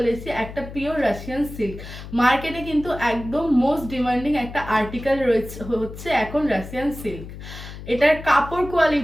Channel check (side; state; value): left; noise; hum, 12 dB below the sound